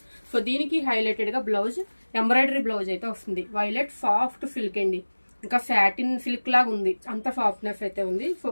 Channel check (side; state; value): both; inverted; correlation -1.00